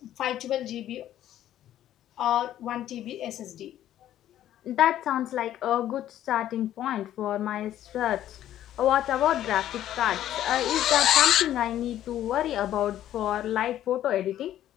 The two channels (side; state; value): right; quieter; 12.2 dB